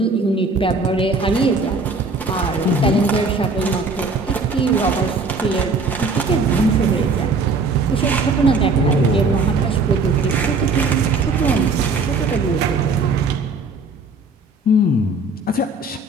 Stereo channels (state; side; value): quieter; left; 3.6 dB